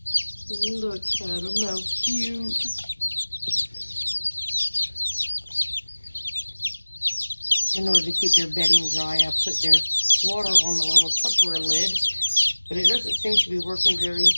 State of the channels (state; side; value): inverted; both; correlation -1.00